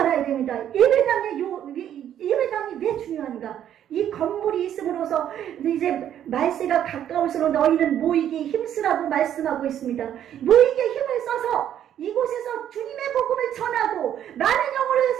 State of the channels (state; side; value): quieter; left; 10.4 dB